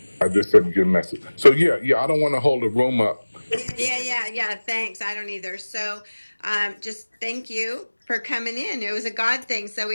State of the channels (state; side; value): inverted; both; correlation -1.00